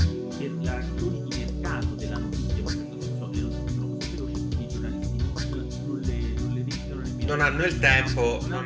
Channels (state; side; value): identical; both; correlation 1.00